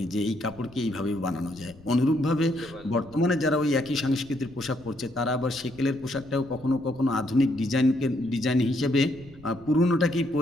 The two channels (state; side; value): noise; left; rumble, 23 dB below the sound